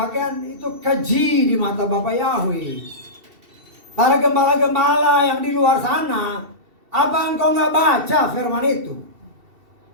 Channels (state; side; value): late; left; 2.7 ms